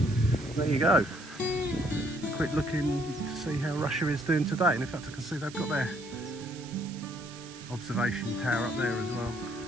There you go. Quick looking to see how Russia is doing today, and in fact I can see they've got their observation tower up there as well.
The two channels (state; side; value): noise; right; hiss, 17 dB below the sound